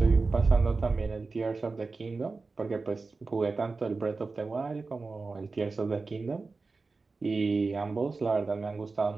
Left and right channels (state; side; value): quieter; left; 4.0 dB